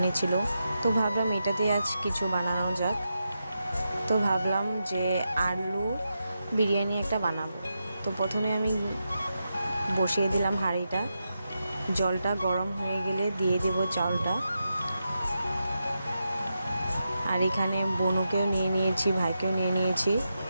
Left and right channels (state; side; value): inverted; both; correlation -0.87